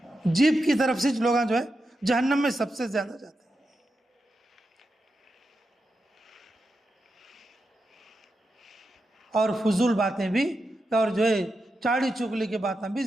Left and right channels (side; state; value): both; normal; correlation 0.88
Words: جیب کی طرف سے لوگ جو ہے جہنم میں سب سے زیادہ جاتے ہیں۔ اور فضول باتیں بھی، اور جو ہے چاڑی چغلی کی باتیں بھی